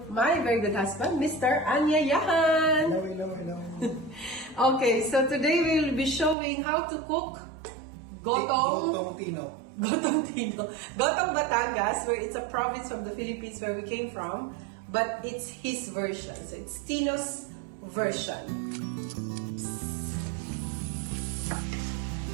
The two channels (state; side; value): drops out; left; at 6.4 s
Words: my very good husband, Mr. Anyayahan. Hello. Okay, so today we'll be showing how to cook Gotong Batangas, where it's a province from the Philippines where we came from, but it's his version. So it's Tino's version.